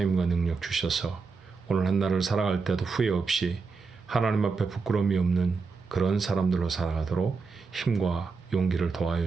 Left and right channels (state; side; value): quieter; left; 4.6 dB